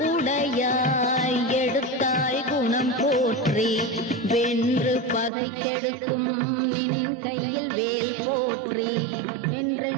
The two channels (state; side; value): drops out; left; at 5.3 s